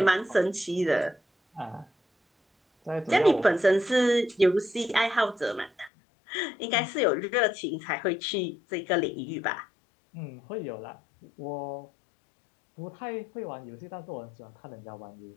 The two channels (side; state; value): right; drops out; at 5.9 s